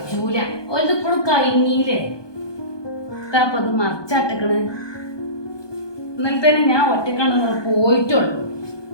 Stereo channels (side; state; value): right; late; 1.2 ms